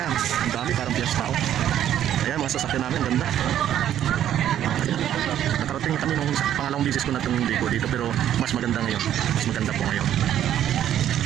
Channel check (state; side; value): quieter; left; 11.0 dB